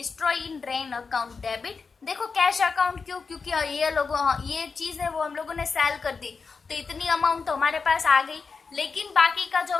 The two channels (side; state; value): right; quieter; 4.9 dB